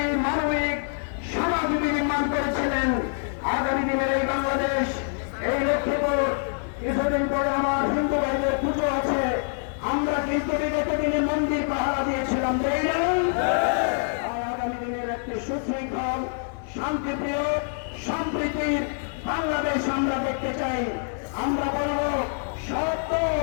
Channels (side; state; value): right; silent; 61 dB below the other